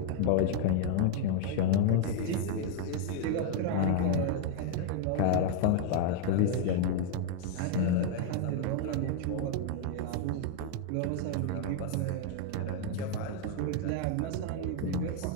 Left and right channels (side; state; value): both; different; correlation 0.00